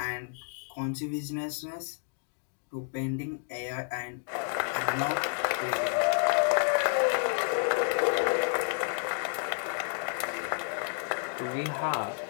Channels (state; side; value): silent; right; 57 dB below the other